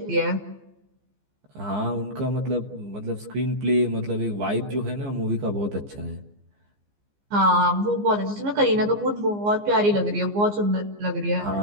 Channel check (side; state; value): left; late; 15 ms